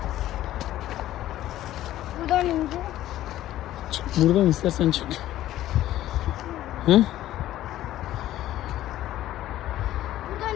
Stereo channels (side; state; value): right; quieter; 13.8 dB